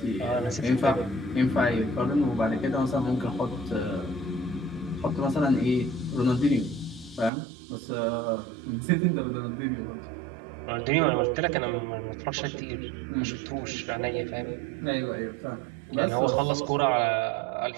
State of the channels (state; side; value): drops out; left; at 7.3 s